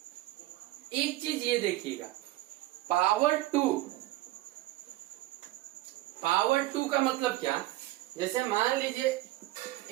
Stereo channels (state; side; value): quieter; left; 17.3 dB